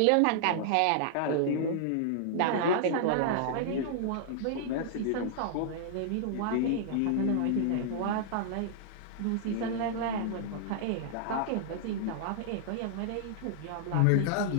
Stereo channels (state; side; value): different; both; correlation -0.01